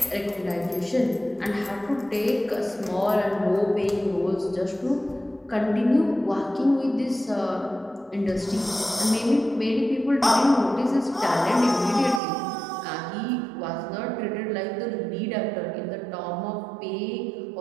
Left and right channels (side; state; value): left; drops out; at 12.2 s